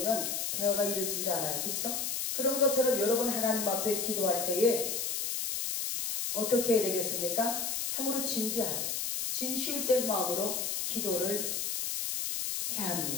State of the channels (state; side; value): noise; left; hiss, 1 dB below the sound